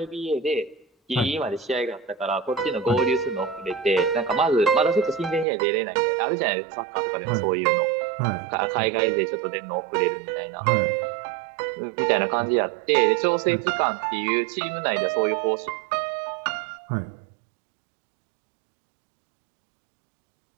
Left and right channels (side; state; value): left; drops out; at 5.5 s